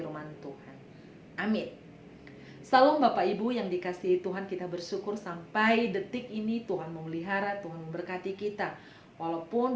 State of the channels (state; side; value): identical; both; correlation 1.00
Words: Tuhan. Amin. Salam Bapak Ibu yang dikasihi Tuhan, kita bersyukur sampai detik ini Tuhan memelihara, Tuhan memberkati kita.